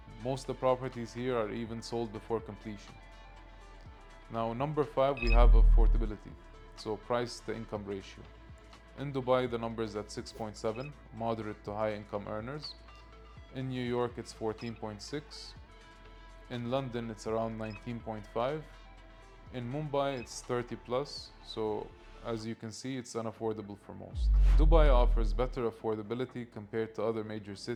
Most of the properties here are even sold before completion. Now, number 5, we have affordability, so price to income ratio. In Dubai, the number is at 6.7, moderate to high income earners. In New York, it's 14.6. In London, it's around 19.5. In Mumbai, it's 30 plus, so as you can see, it's unaffordable for most. Dubai offers better affordability compared to other major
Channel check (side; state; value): both; identical; correlation 1.00